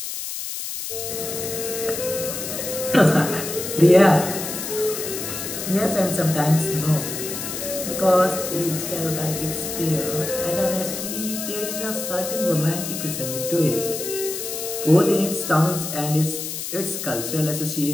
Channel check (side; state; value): left; noise; hiss, 6 dB below the sound